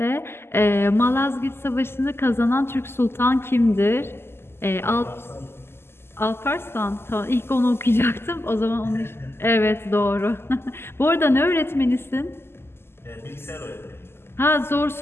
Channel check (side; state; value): right; late; 0.12 ms